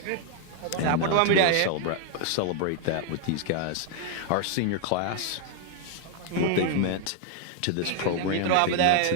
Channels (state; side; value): different; both; correlation 0.00